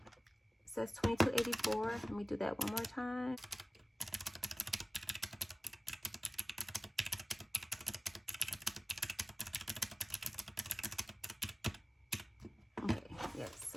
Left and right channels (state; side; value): normal; both; correlation 0.97